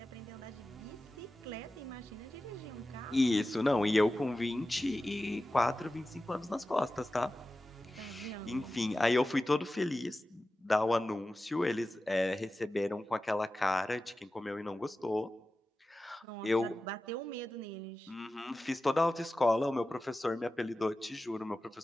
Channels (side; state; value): both; normal; correlation 0.94